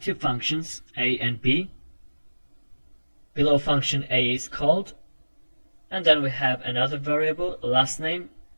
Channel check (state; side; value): inverted; both; correlation -1.00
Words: functions A and B, Below function A is called, and then we have another variable, last name,